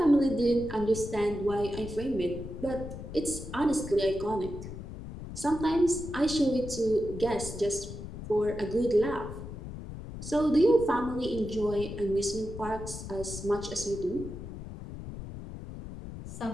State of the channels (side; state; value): left; noise; rumble, 10 dB below the sound